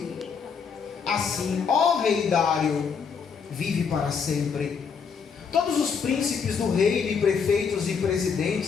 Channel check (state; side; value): quieter; right; 6.2 dB